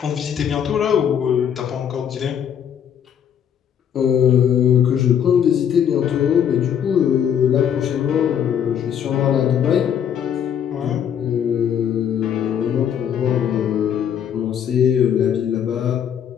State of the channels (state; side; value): quieter; right; 8.8 dB